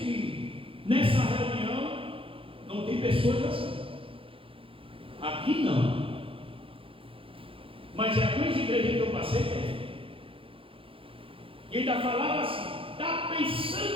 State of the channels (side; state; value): left; late; 0.26 ms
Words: nessa reunião não tem pessoas assim. Aqui não. Mas é algumas igrejas que eu passei tem. E ainda falava assim, está